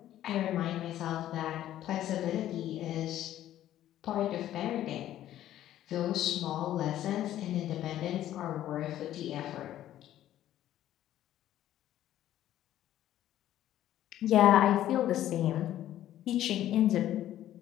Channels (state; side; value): quieter; right; 12.6 dB